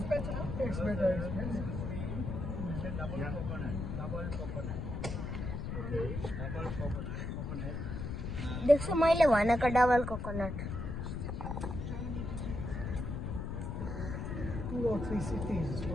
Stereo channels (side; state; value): left; noise; rumble, 4 dB below the sound